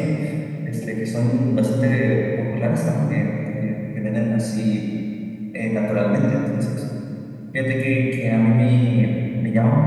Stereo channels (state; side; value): identical; both; correlation 1.00